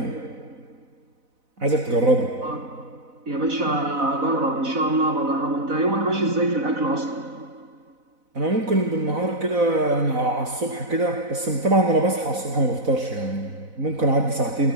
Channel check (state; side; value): late; left; 4.0 ms